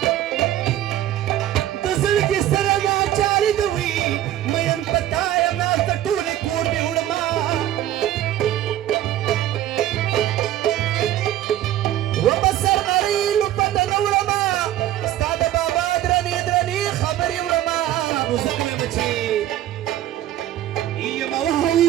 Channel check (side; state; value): left; quieter; 12.7 dB